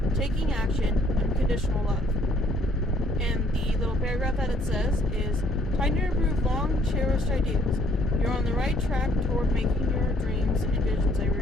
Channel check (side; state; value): both; normal; correlation 0.64